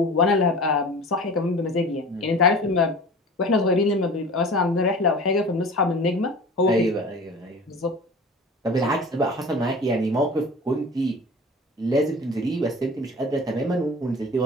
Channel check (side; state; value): both; normal; correlation 0.39